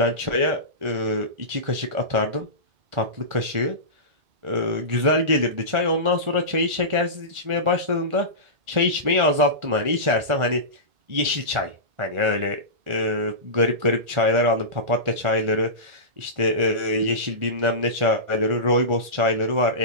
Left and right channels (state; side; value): late; left; 1.5 ms